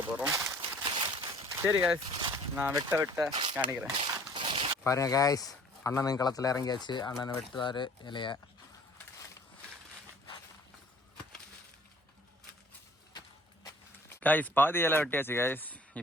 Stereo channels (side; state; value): both; normal; correlation 0.52